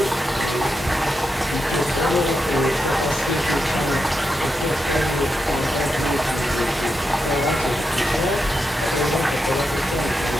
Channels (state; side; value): normal; both; correlation 0.86